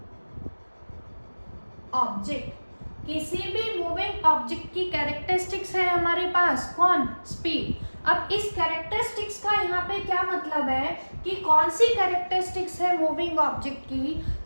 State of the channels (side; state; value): both; inverted; correlation -1.00